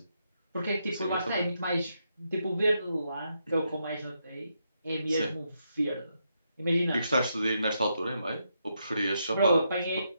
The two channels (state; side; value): inverted; both; correlation -0.81